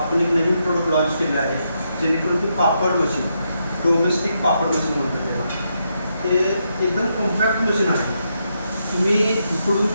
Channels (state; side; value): inverted; both; correlation -0.81